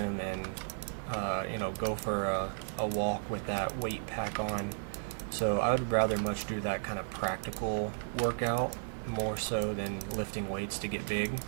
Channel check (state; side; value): silent; left; 55 dB below the other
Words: and, go for a walk with that weight pack on. So I would rather much do that kind of practical workout more so than lifting weights to get big.